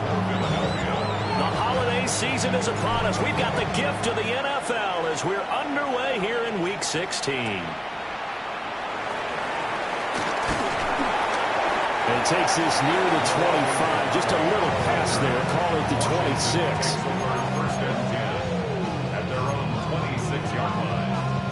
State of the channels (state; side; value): identical; both; correlation 1.00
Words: Season is upon us. We've got the gift of the NFL as we're underway here in Week 16. And takes this near the 25. Just a little pass there. Call it the 26. First and 10 at their own 26-yard line.